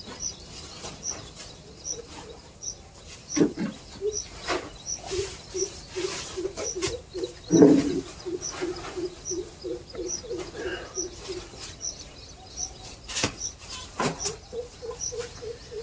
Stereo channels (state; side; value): identical; both; correlation 1.00